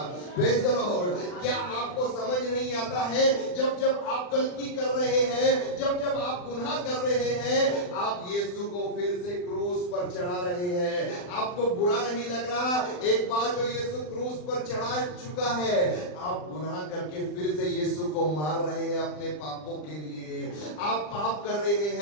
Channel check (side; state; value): right; late; 40 ms